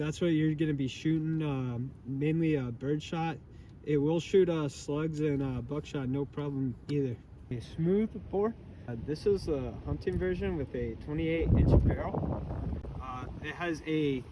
what you're going to be shooting, mainly bird shot. It will shoot slugs and buckshot, no problem either. A smooth bore. This is a hunting version with a 28-inch barrel. It has a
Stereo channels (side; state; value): both; identical; correlation 1.00